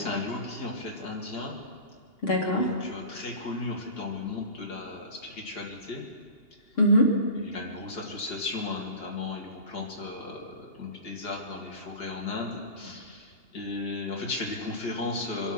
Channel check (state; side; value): late; right; 2.8 ms